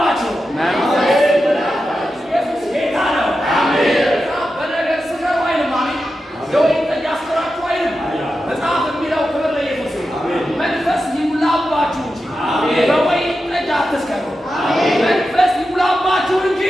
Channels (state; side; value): normal; both; correlation 0.90